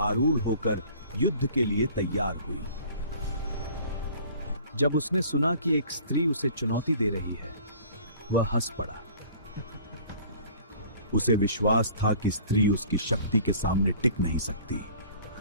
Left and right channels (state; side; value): inverted; both; correlation -0.49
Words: आरूढ़ होकर युद्ध के लिए तैयार हुई। जब उसने सुना कि एक स्त्री उसे चुनौती दे रही है, वह हंस पड़ा। उसे विश्वास था कि स्त्री उसकी शक्ति के सामने टिक नहीं सकती।